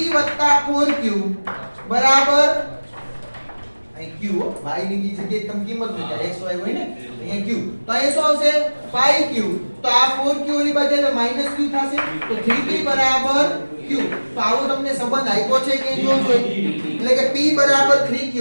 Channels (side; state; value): both; inverted; correlation -1.00